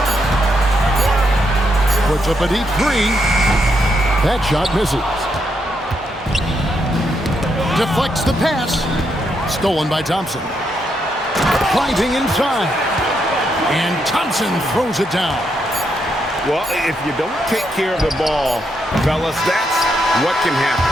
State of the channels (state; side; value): normal; both; correlation 0.79